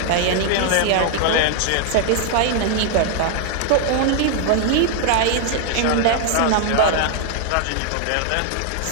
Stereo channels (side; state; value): both; different; correlation 0.00